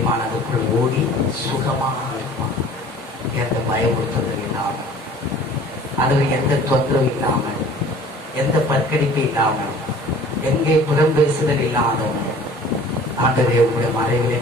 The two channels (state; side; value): normal; both; correlation 0.48